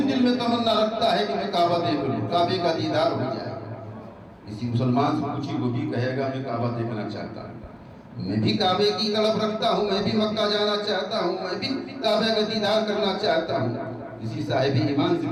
دل میں تمنا رکھتا ہے کہ میں کعبہ دیکھ لوں، کعبے کا دیدار ہو جائے۔ کسی مسلمان سے پوچھی وہ بھی کہے گا میں کعبہ دیکھنا چاہتا ہوں، میں بھی کعبے کی طلب رکھتا ہوں، میں بھی مکہ جانا چاہتا ہوں، میں بھی کعبے کا دیدار کرنا چاہتا ہوں۔ کسی صاحب ایمان سے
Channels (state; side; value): identical; both; correlation 1.00